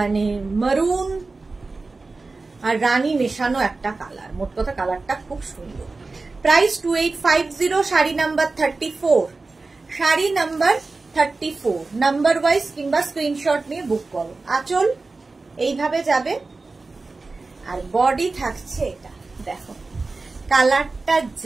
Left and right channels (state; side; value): quieter; left; 3.7 dB